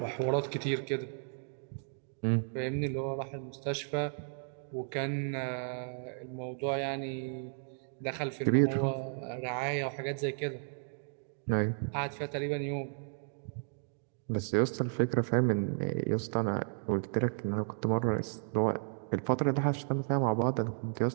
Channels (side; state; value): left; silent; digital silence